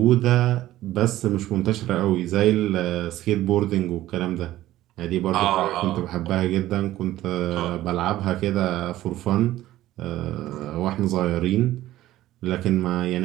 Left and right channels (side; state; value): left; quieter; 14.9 dB